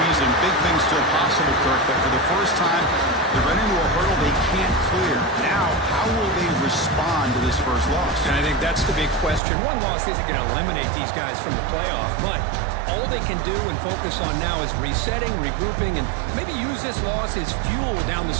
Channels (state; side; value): drops out; left; at 9.4 s